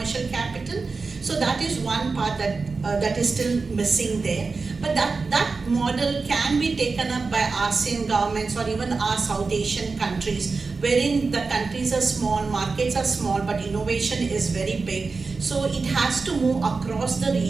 capital. So that is one part that is still missing there. But that model can be taken up by ASEAN governments or even our South Asian countries, wherein the countries are small, markets are small, but innovation is very big. So it has to move across the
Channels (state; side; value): quieter; left; 4.3 dB